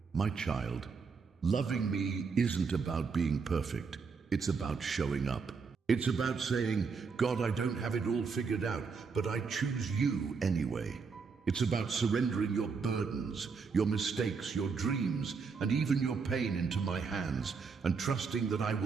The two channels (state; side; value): quieter; left; 5.2 dB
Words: My child, loving me isn't about being perfect. It's about showing up. It's about saying, God, I don't have it all figured out, but I choose you anyway. It's about surrendering your burdens, your mistakes, your dreams, and even your pain into my hands, and trusting that I